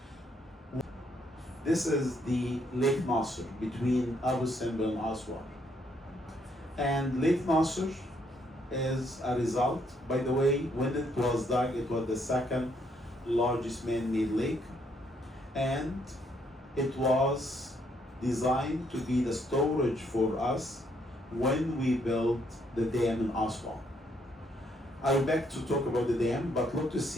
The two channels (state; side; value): normal; both; correlation 0.71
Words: This is the Lake Nasser between Abu Simbel and ASWAN. And Lake Nasser is a result, by the way, when it was dug, it was the second largest man-made lake, and it was designed to be the storage for us when we built the dam in Aswan. I'll back to talk about the dam, but look to